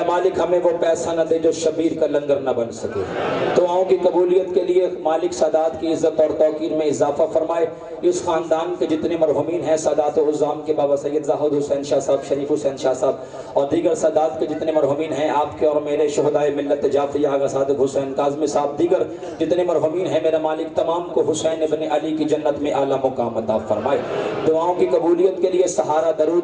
मालिक हमें वो पैसा न दे जो शबीर का लंगर न बन सके। दुआओं की कबूलियत के लिए मालिक सादात की इज़्ज़त और तौकीर में इजाफा फरमाए। इस ख़ानदान के जितने मरहूमीन हैं, सादात उज़्ज़ाम के बाबा सैयद ज़ाहिद हुसैन शाह साहब, शरीफ हुसैन शाह साहब और दीगर सादात के जितने मरहूमीन हैं, आपके और मेरे शहदाए मिल्लत जाफ़री आगा सादिक हुसैन काज़मी साहब, दीगर जितने मरहूमीन हैं, मेरा मालिक तमाम को हुसैन इब्न अली की जन्नत में आला मुकाम अता फरमाए। दुआओं की कबूलियत के लिए सहारा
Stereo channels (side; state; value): both; identical; correlation 1.00